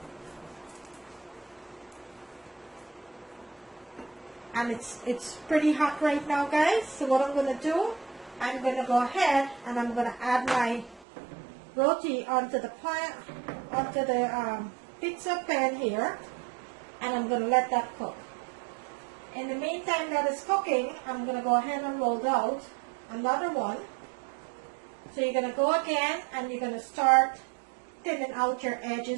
and it's pretty hot right now, guys. So what I'm going to do, I'm going to go ahead and I'm going to add my roti onto the pizza pan here, and I'm going to let that cook. In the meantime that is cooking, I'm going to go ahead and roll out another one. So you're going to go again and you're going to start thinning out your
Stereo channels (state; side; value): drops out; left; at 11.1 s